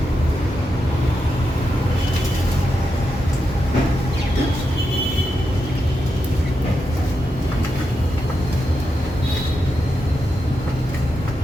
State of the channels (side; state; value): both; normal; correlation 0.86